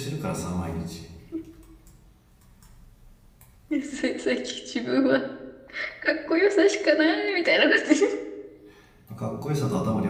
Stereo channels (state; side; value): identical; both; correlation 1.00